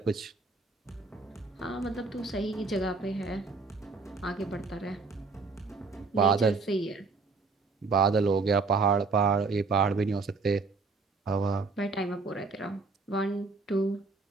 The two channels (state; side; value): quieter; left; 4.1 dB